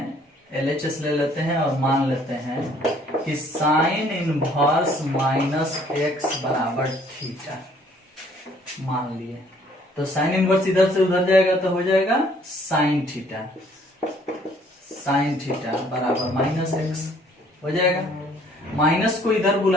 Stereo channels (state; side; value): normal; both; correlation 0.60